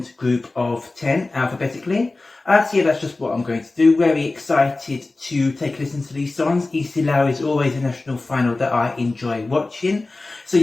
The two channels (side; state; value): right; quieter; 3.2 dB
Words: group of 10 alphabetically. So yeah, that's just what I'm going to do. Very excited to take a listen to these songs. Eesti Laul is always a national final that I enjoy watching. So